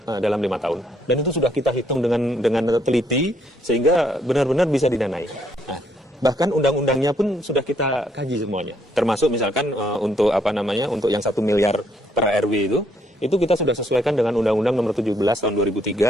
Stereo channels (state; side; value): normal; both; correlation 0.70